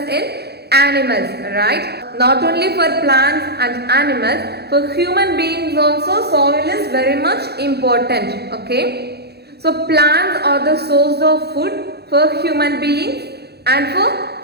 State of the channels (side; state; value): left; late; 0.47 ms